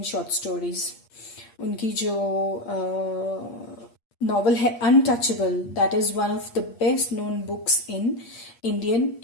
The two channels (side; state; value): right; late; 8.5 ms